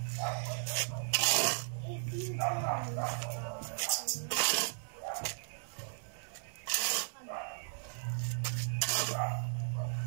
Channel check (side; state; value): left; silent; digital silence